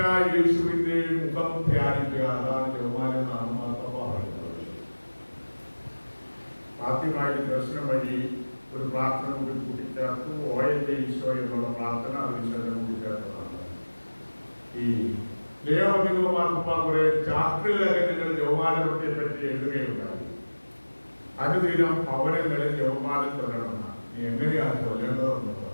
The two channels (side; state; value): both; inverted; correlation -1.00